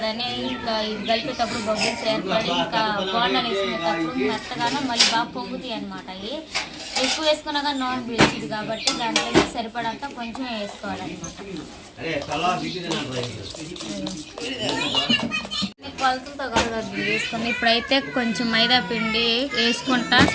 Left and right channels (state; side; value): identical; both; correlation 1.00